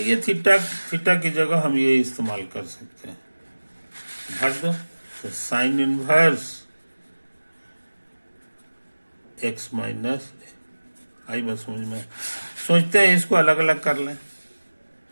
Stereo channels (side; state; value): both; inverted; correlation -1.00